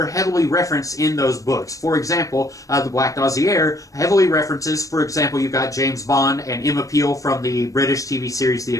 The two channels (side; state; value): right; late; 0.16 ms